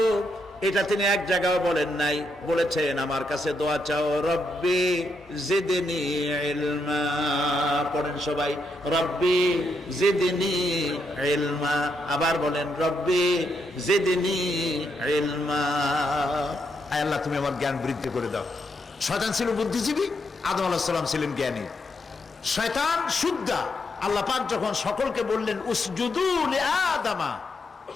এটা তিনি এক জায়গায় বলেন নাই। বলেছেন আমার কাছে দোয়া চাও, রব্বি জিদনি ইলমা। পড়েন সবাই, রব্বি জিদনি ইলমা। আবার বলেন, রব্বি জিদনি ইলমা। আয় আল্লাহ, তুমি আমার জ্ঞান বৃদ্ধি করে দাও। শয়তান ছিল বুদ্ধিজীবী, আদম আলাইহিস সালাম ছিলেন জ্ঞানী। শয়তান শুদ্ধা। আল্লাহ পাক যখন সকলকে বললেন উসজুদু লিআদামা,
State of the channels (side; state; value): both; normal; correlation 0.80